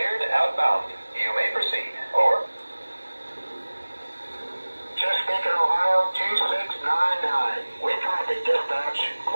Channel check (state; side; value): inverted; both; correlation -1.00